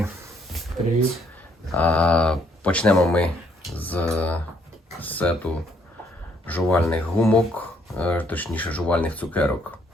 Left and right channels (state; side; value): normal; both; correlation 0.68